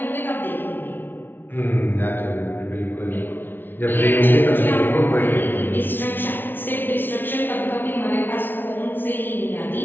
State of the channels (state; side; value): late; right; 0.098 ms